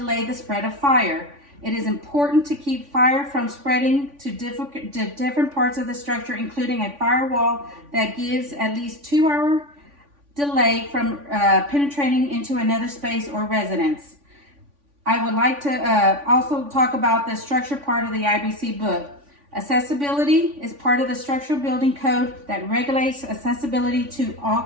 the spread of fire. It is important to keep fire from spreading to different parts of the structure, including a firewall that gives at least 2-hour delay from penetrating into another space or residence. I would like to also talk about the structure part of the IBC book. Accessibility is part of the structural building code that regulates accessibility to all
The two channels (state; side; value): late; left; 3.5 ms